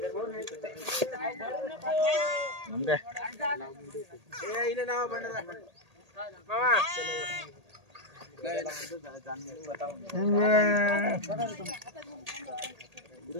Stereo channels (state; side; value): late; left; 1.8 ms